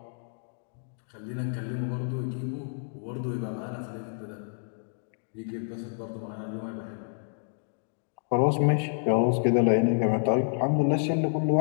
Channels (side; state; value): right; silent; digital silence